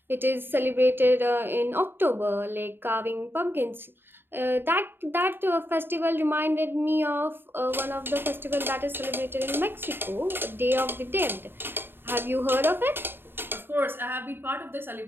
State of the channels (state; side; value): late; left; 0.10 ms